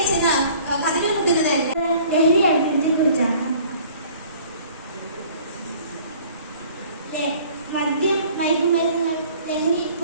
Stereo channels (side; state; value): both; inverted; correlation -0.52